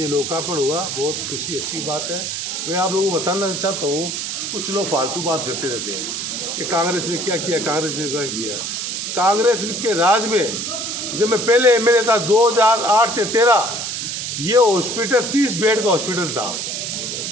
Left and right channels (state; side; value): noise; right; hiss, 4 dB below the sound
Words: लोकार्पण हुआ। बहुत खुशी अच्छी बात है। मैं आप लोगों को बताना चाहता हूँ, कुछ लोग फालतू बात करते रहते हैं कि कांग्रेस ने क्या किया, कांग्रेस ने क्या किया। कांग्रेस के राज में जब मैं पहले एमएलए था 2008 से 13, ये हॉस्पिटल 30 बेड का हॉस्पिटल था।